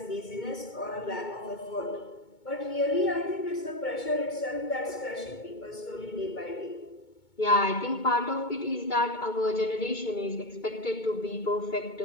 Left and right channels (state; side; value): late; right; 2.2 ms